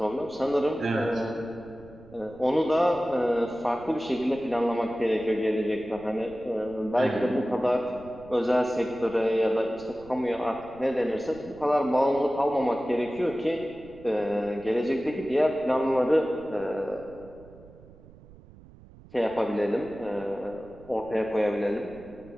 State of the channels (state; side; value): noise; right; rumble, 22 dB below the sound